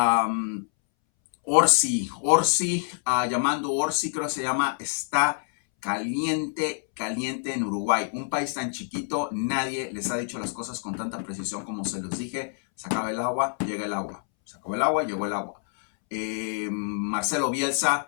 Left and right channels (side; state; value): right; silent; 61 dB below the other